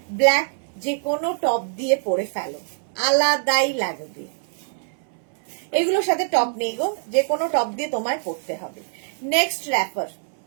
ব্ল্যাক, যে কোনো টপ দিয়ে পরে ফেলো, আলাদাই লাগবে। এগুলোর সাথে টপ নেই গো, যে কোনো টপ দিয়ে তোমায় পরতে হবে। নেক্সট র্যাপার,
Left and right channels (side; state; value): left; silent; 63 dB below the other